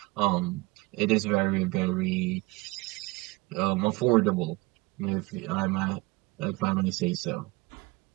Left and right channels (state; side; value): quieter; left; 23.0 dB